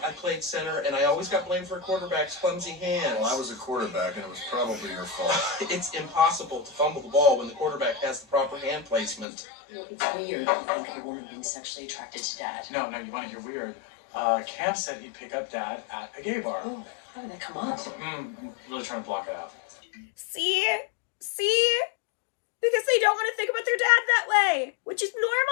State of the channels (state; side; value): drops out; right; at 9.2 s